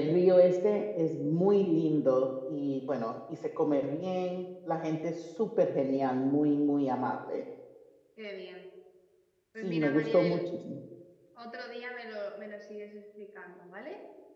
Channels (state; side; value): identical; both; correlation 1.00